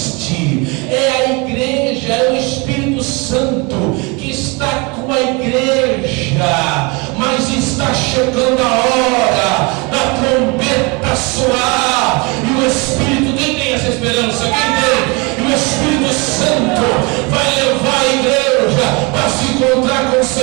é a igreja, é o Espírito Santo que está com a igreja, mas está chegando a hora da trombeta soar, e o Espírito, quem tem essa esperança? Quem tem? E o Espírito Santo vai levar a igreja para se encontrar com o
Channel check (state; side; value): quieter; left; 28.7 dB